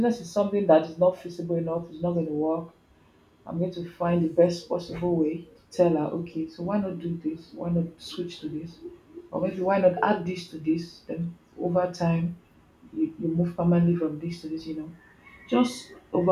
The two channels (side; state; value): both; identical; correlation 1.00